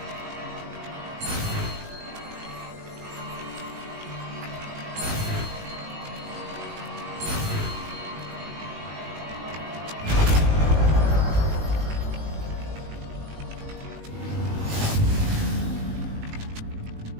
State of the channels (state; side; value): late; left; 19 ms